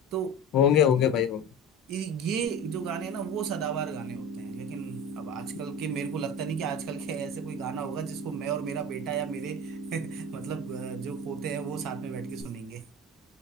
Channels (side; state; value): both; normal; correlation 0.32